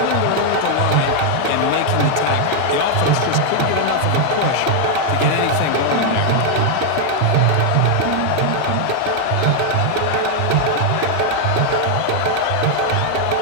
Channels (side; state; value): both; different; correlation 0.00